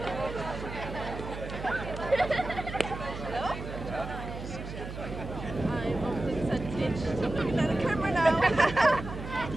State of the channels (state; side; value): noise; right; hum, 9 dB below the sound